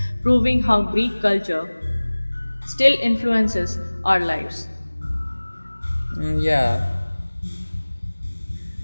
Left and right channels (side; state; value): both; inverted; correlation -1.00